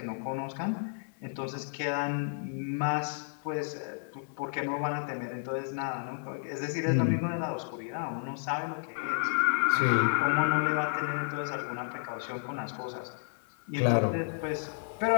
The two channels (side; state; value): right; silent; digital silence